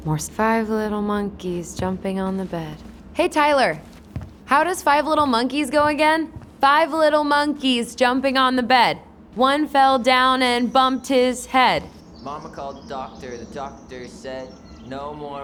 More 5 little monkeys jumping on the bed. Hey, Tyler. How does 5 little monkeys go again? 5 little monkeys jumping on the bed. One fell down and bumped his head. Mama called the doctor. The doctor said, no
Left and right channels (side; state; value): both; identical; correlation 1.00